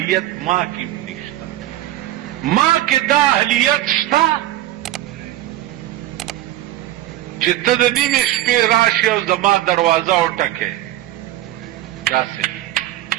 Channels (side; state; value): left; quieter; 14.6 dB